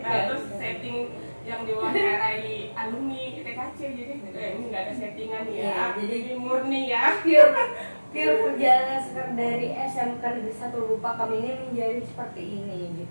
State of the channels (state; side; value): inverted; both; correlation -1.00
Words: terus setting yang diwawancarai alumni TKC, jadi ini nggak ada settingan ya. Iya, jadi ini murni ya. Pure perjalanan Sekar dari SMK Negeri 1 Lupa kami ini menjadi seperti ini